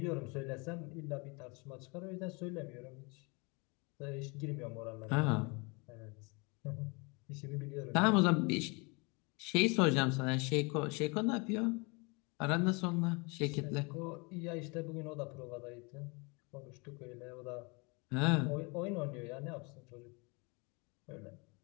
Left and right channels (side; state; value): right; quieter; 29.7 dB